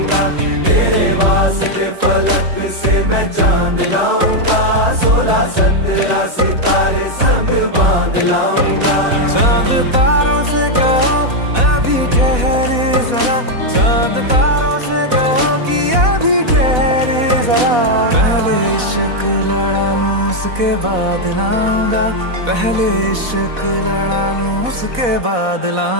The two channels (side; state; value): left; late; 4.1 ms